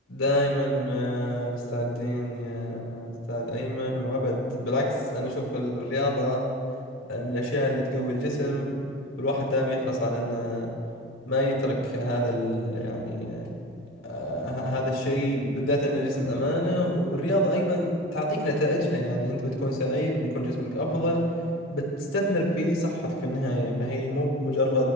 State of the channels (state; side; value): normal; both; correlation 0.32